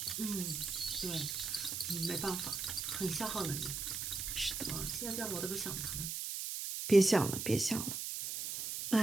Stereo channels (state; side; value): noise; right; hiss, 4 dB below the sound